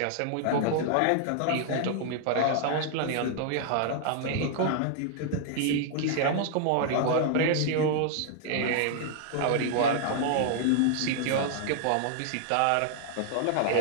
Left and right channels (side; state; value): both; different; correlation -0.01